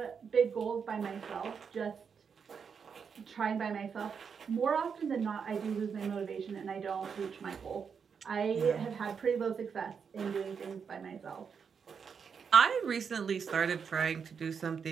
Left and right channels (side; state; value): left; quieter; 6.4 dB